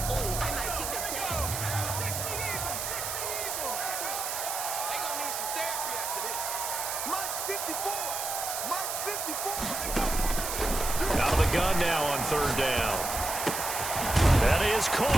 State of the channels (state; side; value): noise; right; hiss, 3 dB below the sound